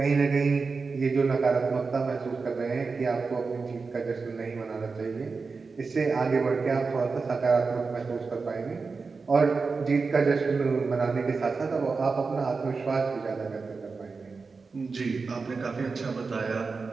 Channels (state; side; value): quieter; left; 4.5 dB